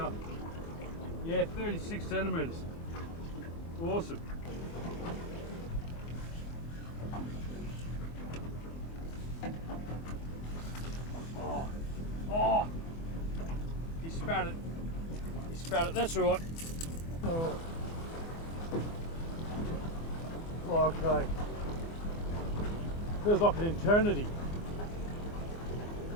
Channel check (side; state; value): right; late; 24 ms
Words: yeah, 36 centimeters. Awesome. Oh, he spat it. He spat it. That's all right. Oh. Okay. Feels like an eternity.